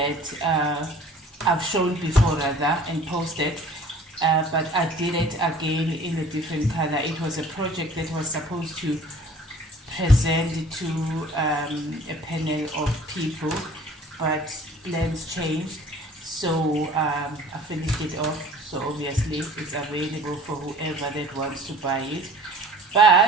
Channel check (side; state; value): both; normal; correlation 0.48